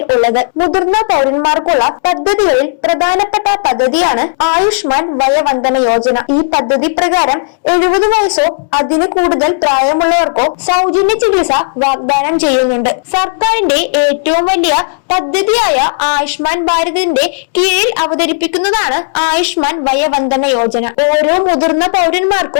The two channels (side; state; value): right; silent; digital silence